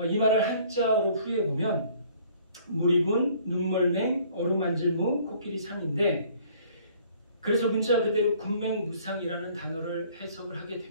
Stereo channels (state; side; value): inverted; both; correlation -0.57